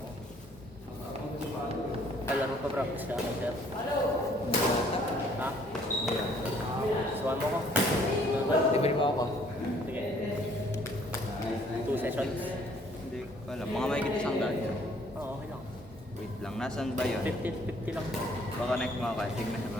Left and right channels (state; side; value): normal; both; correlation 0.61